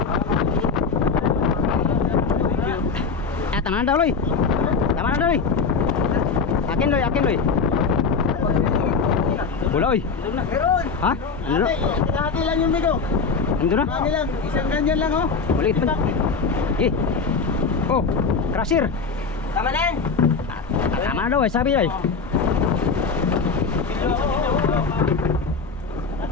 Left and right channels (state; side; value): quieter; right; 4.9 dB